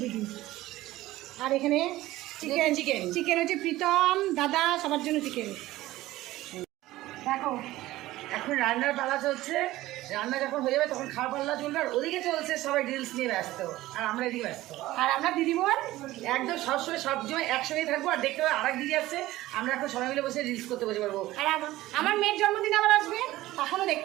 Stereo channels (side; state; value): left; quieter; 16.7 dB